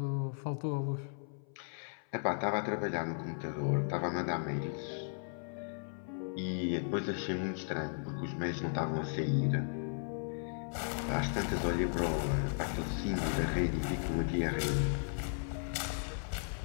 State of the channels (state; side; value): silent; right; 54 dB below the other